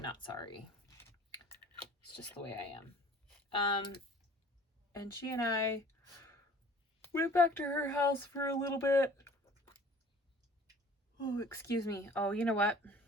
sorry. It's just the way I am. And she and I went back to her house for a little bit. Oh, excuse me. Oh, you know what?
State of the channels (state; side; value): normal; both; correlation 0.49